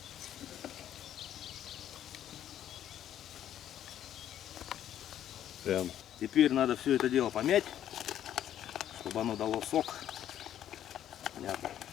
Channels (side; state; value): right; quieter; 10.9 dB